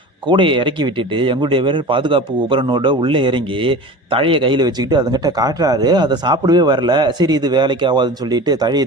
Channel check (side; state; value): both; normal; correlation 0.35